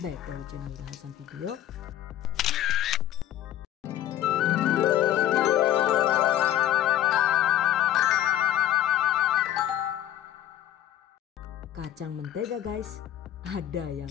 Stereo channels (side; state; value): right; quieter; 12.2 dB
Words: back to our channel Bahasan Video. Kacang mentega guys, ada yang